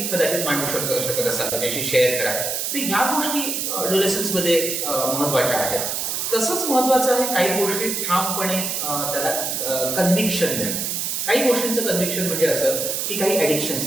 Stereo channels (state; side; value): noise; right; hiss, 1 dB below the sound